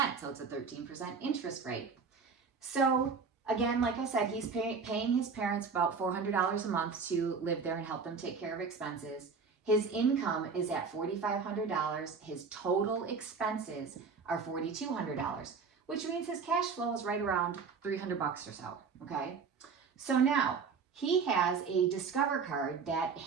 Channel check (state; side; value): quieter; left; 5.3 dB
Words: So it's a 13% interest rate. So again, like I said, he's paying his parents about $400 a month to live there and help them take care of expenses. His income is at $4,500. His total expenses are $4,200, which means his cash flow is right around $300 or so, okay? So now, he has a Discover card that